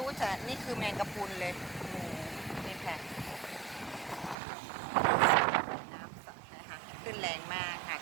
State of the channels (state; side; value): drops out; left; at 4.4 s